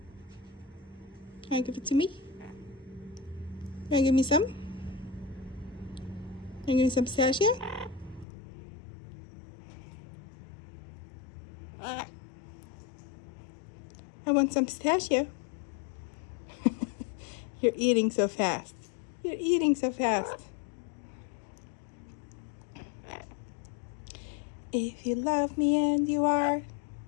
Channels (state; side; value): drops out; right; at 8.2 s